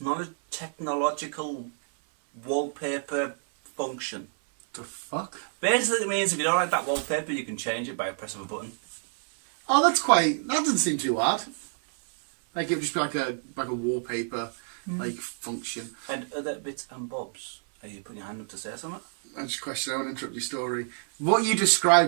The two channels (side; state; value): left; silent; 59 dB below the other